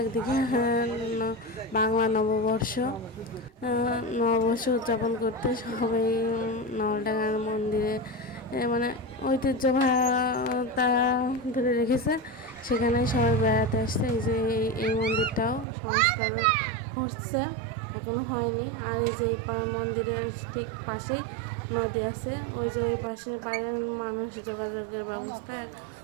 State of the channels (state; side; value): drops out; left; at 15.7 s